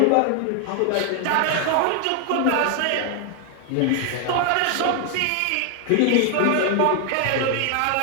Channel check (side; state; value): both; different; correlation 0.00